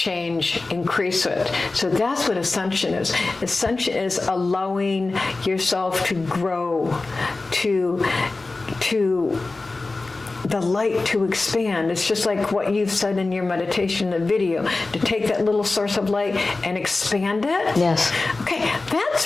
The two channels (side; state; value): right; quieter; 3.4 dB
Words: increase it. So that's what ascension is. Ascension is allowing yourself to grow, to the light to expand. It's just like what you've said in your meditation, the video, to take that little source of light and expand it. Yes. Okay,